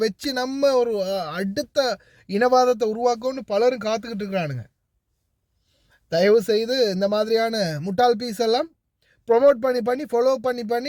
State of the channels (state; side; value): identical; both; correlation 1.00